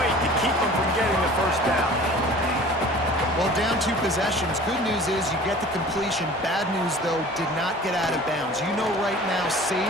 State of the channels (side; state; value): both; normal; correlation 0.45